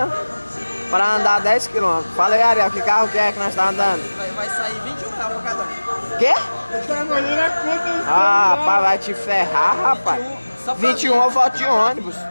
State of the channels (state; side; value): inverted; both; correlation -1.00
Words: para andar 10 km. Fala aí, Ariel, que carro que é que nós tá andando? Vai sair R$21 pra cada um. Quê? Tá olhando a conta. Ah, rapaz, vai te ferrar, rapaz. Só pra 21 eu volto de ônibus.